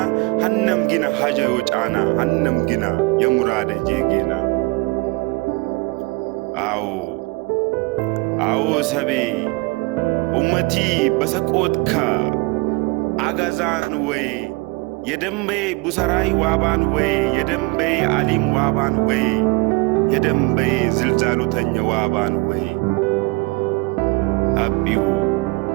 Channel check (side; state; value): left; quieter; 25.8 dB